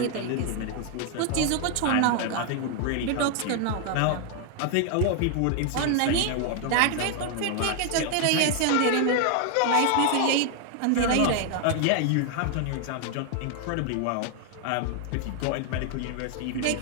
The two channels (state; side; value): different; both; correlation 0.00